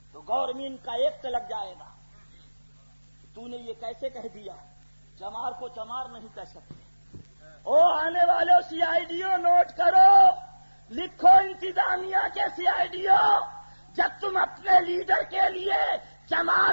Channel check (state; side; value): inverted; both; correlation -1.00